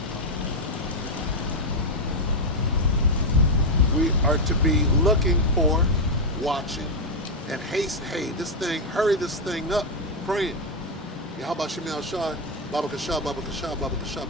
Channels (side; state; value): both; normal; correlation 0.02